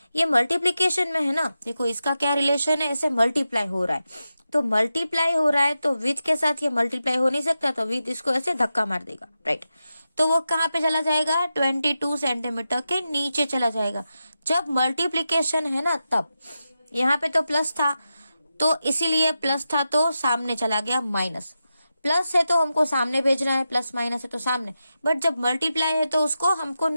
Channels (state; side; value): inverted; both; correlation -0.90